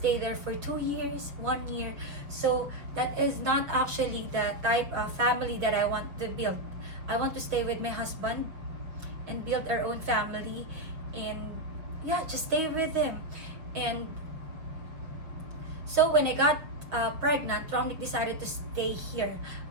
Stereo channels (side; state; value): left; late; 6.1 ms